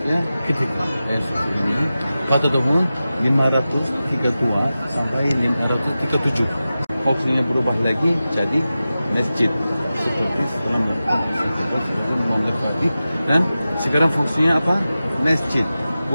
ketiga. Hagia Sophia ini pada tahun 532 sampai 537. Fungsinya berubah lagi jadi masjid seperti setelah memlengkapi. Dan sekarang fungsinya apa? Masjid,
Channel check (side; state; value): both; inverted; correlation -0.94